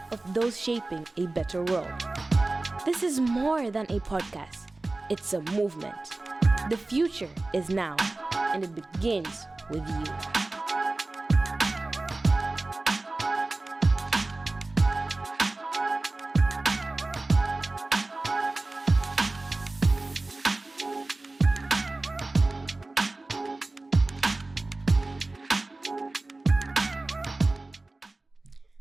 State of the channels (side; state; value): left; quieter; 3.1 dB